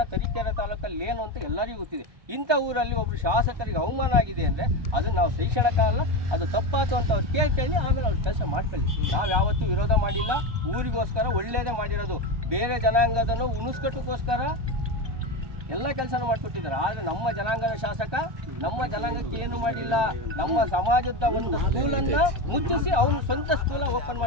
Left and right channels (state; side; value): late; left; 1.2 ms